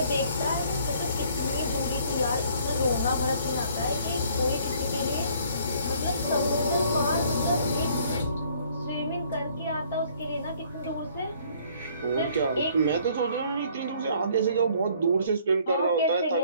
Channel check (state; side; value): inverted; both; correlation -0.60